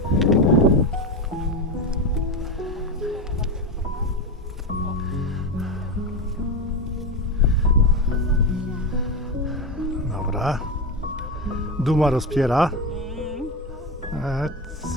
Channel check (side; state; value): both; normal; correlation 0.17